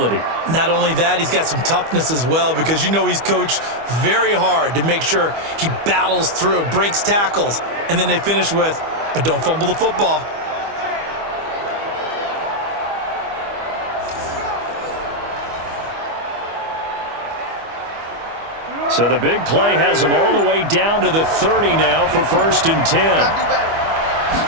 Not only that, he's got some toughness as well because you know he's coached very hard to make sure he battles through, breaks tackles, and then they finish with, but don't fumble the football. So the big play has him all the way down to the 30 now for 1st and 10.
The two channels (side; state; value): left; late; 25 ms